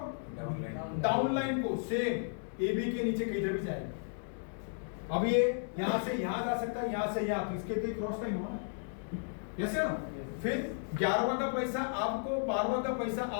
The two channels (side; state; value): right; silent; digital silence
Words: डाउनलाइन को। सेम ए बी के नीचे किधर भी जाएगा। अब ये यहां से यहां जा सकता है, यहां से यहां, तो इसके लिए क्रॉस टाइम हुआ, यस या नो। फिर 11वां का पैसा आपको, 12वां का पैसा